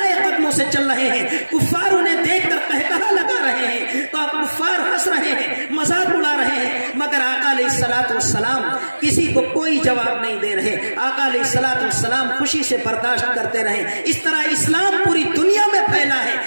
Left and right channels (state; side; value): inverted; both; correlation -1.00